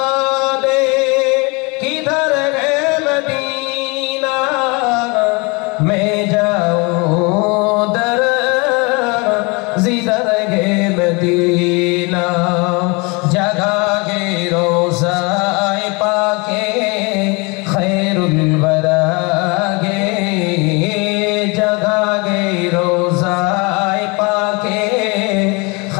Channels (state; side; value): quieter; right; 28.5 dB